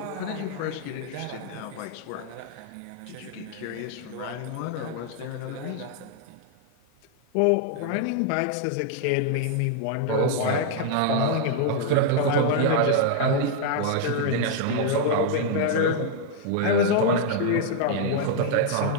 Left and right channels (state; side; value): different; both; correlation 0.00